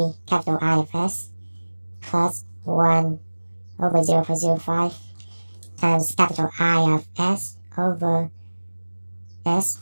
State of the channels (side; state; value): both; inverted; correlation -1.00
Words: capital I of s plus 1 over 0.05 times capital I of s over s.